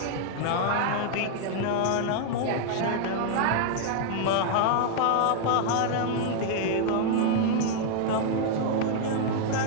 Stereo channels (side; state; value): both; different; correlation 0.00